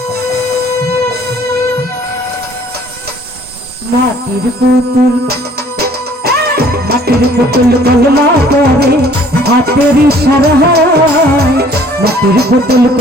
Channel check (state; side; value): normal; both; correlation 0.56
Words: মাটির পুতুল কলমা করে হাতের ইশারায় মাটির পুতুল